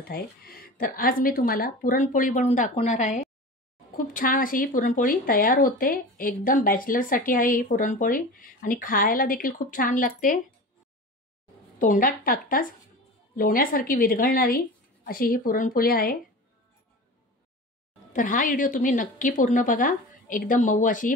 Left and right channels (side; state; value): both; normal; correlation 0.33